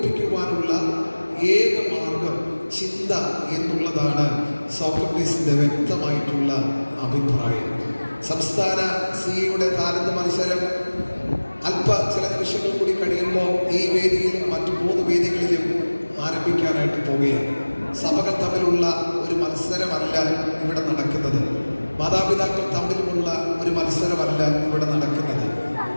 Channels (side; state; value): both; inverted; correlation -1.00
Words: ഏക മാർഗം ചിന്ത എന്നുള്ളതാണ് സോക്രട്ടീസിന്റെ വ്യക്തമായിട്ടുള്ള അഭിപ്രായം. സംസ്ഥാന സിയുടെ താലന്ത് മത്സരം ചില നിമിഷങ്ങൾ കൂടി കഴിയുമ്പോൾ ഈ വേദിയിലും മറ്റു 3 വേദികളിലും ആരംഭിക്കാനായിട്ട് പോവുകയാണ്. സഭകൾ തമ്മിലുള്ള ഒരു മത്സരമല്ല ഇവിടെ നടക്കുന്നത്. മാതാപിതാക്കൾ തമ്മിലുമുള്ള ഒരു മത്സരമല്ല ഇവിടെ നടക്കുന്നത്.